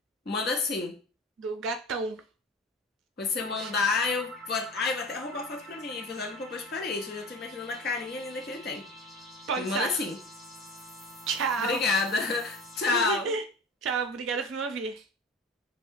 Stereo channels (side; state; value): both; normal; correlation 0.34